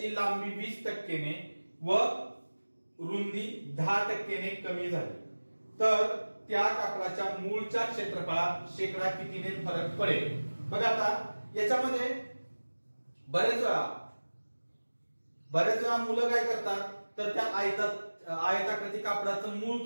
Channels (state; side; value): inverted; both; correlation -1.00